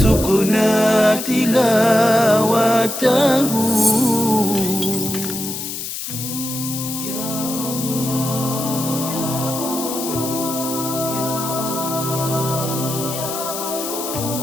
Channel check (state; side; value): noise; left; hiss, 6 dB below the sound